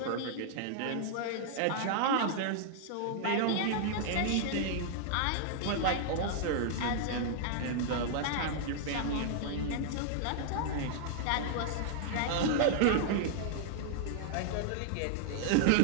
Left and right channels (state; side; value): different; both; correlation -0.01